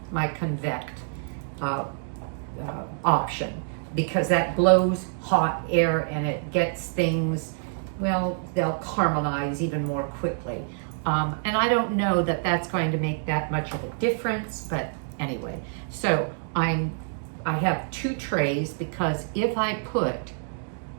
option, because that blows hot air and it gets things, well, they'll caramelize even more quickly. And I don't know that that's going to make that much of a difference, but anyway. So I have 2 trays, because if I put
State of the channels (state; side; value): silent; left; digital silence